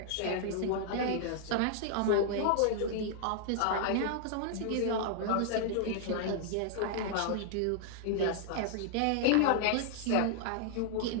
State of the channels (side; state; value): both; different; correlation -0.01